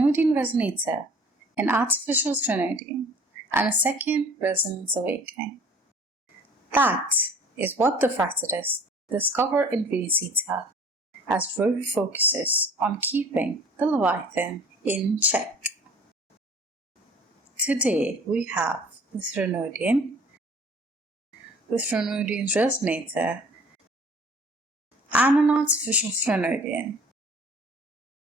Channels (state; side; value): normal; both; correlation 0.50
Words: Resonator, an artificial Threnodian, and a second Resonance Awakening. That is what the Fractsidus discover in Rinascitta, as Rover focuses on keeping the Leviathan in check. Today we have the Threnodian, the Threnodian's Resonator, and an artificial Threnodian.